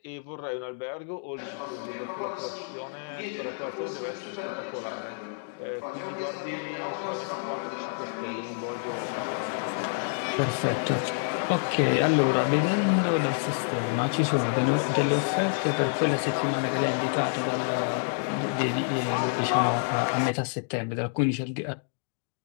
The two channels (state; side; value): silent; right; digital silence